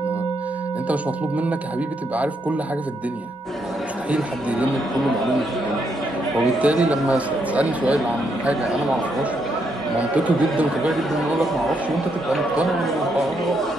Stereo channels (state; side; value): normal; both; correlation 0.77